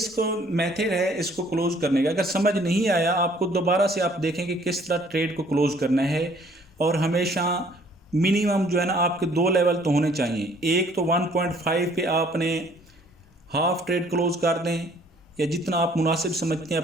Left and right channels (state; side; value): normal; both; correlation 0.59